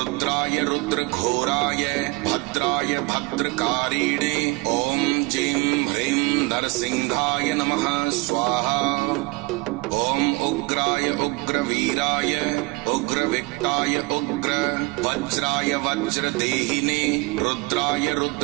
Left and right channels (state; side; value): quieter; left; 24.7 dB